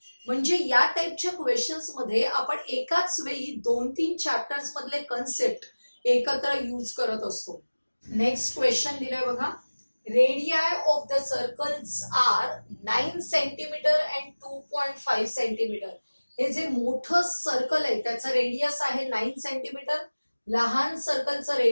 म्हणजे या टाइपच्या क्वेश्चन्स मध्ये आपण एकाच वेळी 2-3 चॅप्टर्स मधले कन्सेप्ट एकत्र यूज करत असतो. नेक्स्ट क्वेश्चन दिलाय बघा. Radii of the circles are 9 centimetre and 2.5 centimetre. हे जे मोठं सर्कल आहे त्याचं रेडियस आहे 9 सेंटीमीटर. लहान सर्कलचं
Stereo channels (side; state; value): both; inverted; correlation -1.00